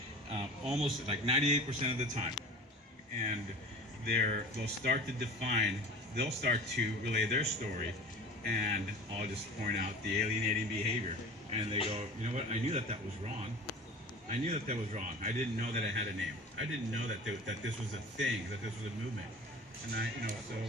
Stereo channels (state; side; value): normal; both; correlation 0.38